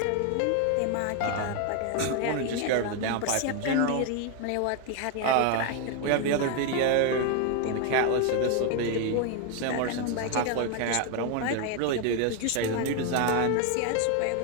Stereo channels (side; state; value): both; different; correlation 0.01